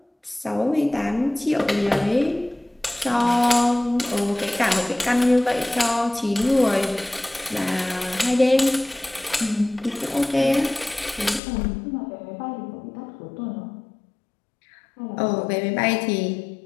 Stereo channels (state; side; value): drops out; right; at 11.4 s